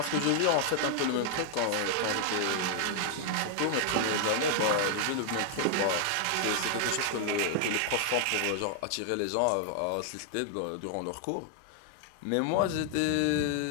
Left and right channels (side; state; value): both; different; correlation 0.00